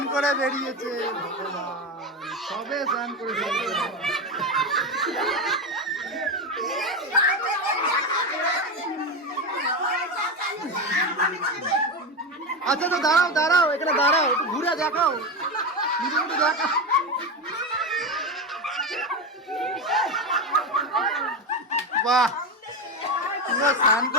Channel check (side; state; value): both; normal; correlation 0.16